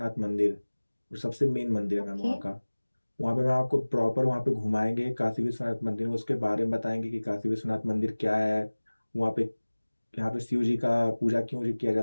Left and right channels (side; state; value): both; inverted; correlation -1.00